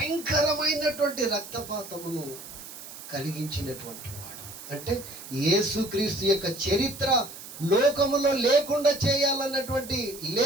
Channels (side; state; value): right; noise; hiss, 14 dB below the sound